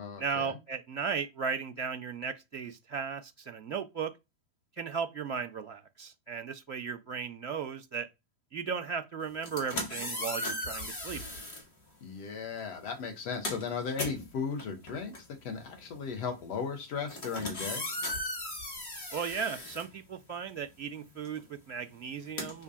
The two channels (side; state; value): right; late; 3.1 ms